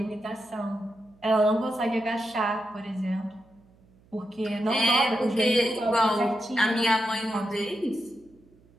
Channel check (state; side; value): noise; right; hum, 30 dB below the sound